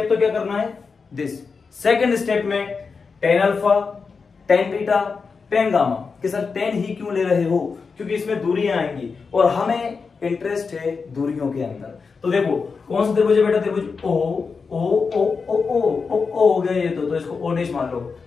तो क्या करना है दिस, सेकंड स्टेप में tan alpha tan beta ten gamma, कि सर टेन ही क्यों ले रहे हो, क्योंकि इसमें दूरियां आएंगी और हमें इंटरेस्ट है दूरियों के अंदर। तो देखो कौन सा त्रिभुज है बेटा, त्रिभुज ओ ओ ओ ओ ओ ओ ओ हो गया ये, तो इसको ओ डैश मान लो,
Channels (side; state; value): right; quieter; 5.0 dB